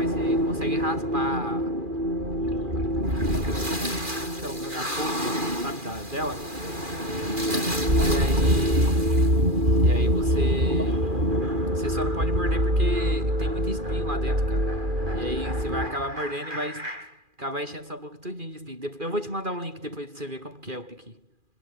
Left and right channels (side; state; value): left; late; 2.4 ms